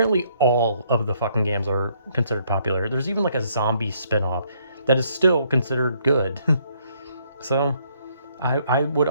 all of the fucking games are considered popular. There's even like a zombie spin-off that is still considered good. So I would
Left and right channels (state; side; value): inverted; both; correlation -0.67